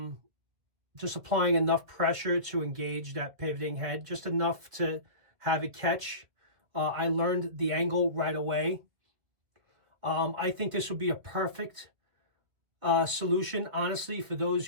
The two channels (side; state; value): left; late; 2.2 ms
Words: Just applying enough pressure to engage that pivoting head, just enough to have it catch. I learned the angle right away. I think this would be a perfect solution, honestly, for those